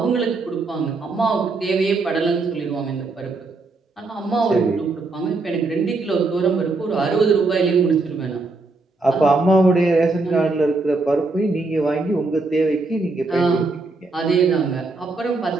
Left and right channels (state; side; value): quieter; left; 3.5 dB